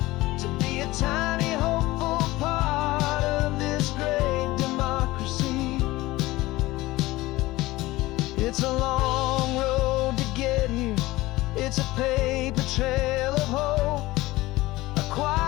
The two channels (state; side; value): quieter; right; 18.9 dB